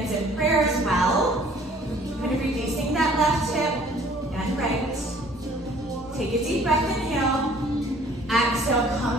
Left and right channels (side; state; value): both; normal; correlation 0.55